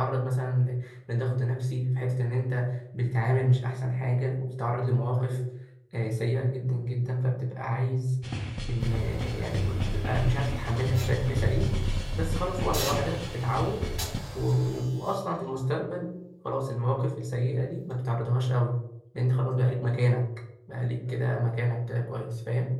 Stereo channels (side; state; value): both; identical; correlation 1.00